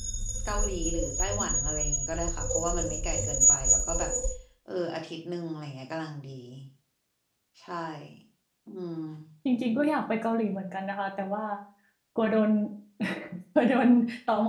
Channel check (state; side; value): identical; both; correlation 1.00